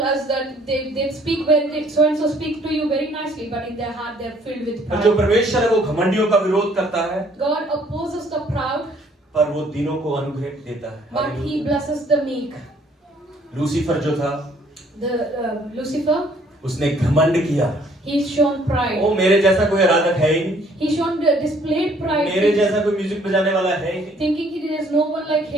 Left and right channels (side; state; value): both; normal; correlation 0.61